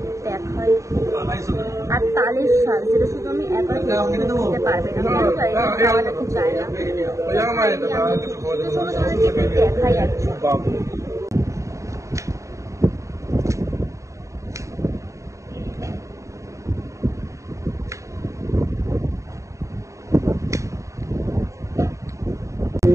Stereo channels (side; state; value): left; late; 0.15 ms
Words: দেখাই। আর তালের শাক, যেটা শুধু আমি একা খেতে পারবে না, খাওয়া নাকি চায় না। চলো তোমাদেরকে দেখাই একজন।